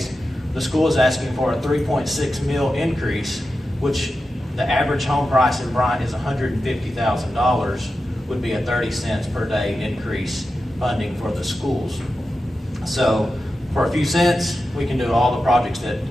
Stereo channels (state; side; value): normal; both; correlation 0.91